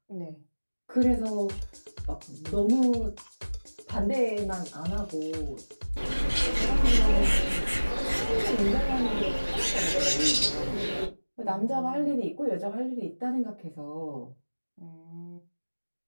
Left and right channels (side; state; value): both; inverted; correlation -1.00